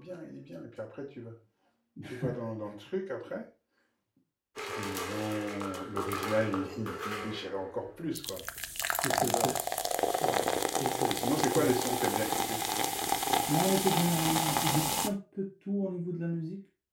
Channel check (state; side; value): identical; both; correlation 1.00